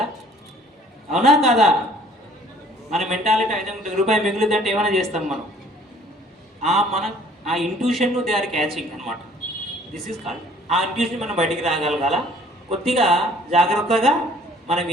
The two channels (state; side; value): normal; both; correlation 0.55